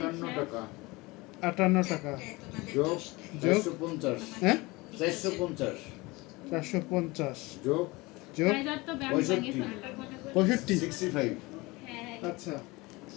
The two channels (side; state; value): right; quieter; 23.0 dB